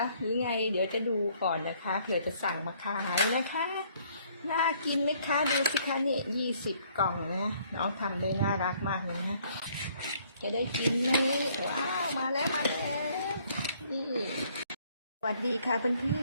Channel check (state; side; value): inverted; both; correlation -0.63